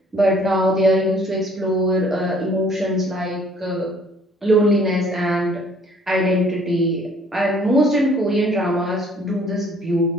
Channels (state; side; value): normal; both; correlation 0.59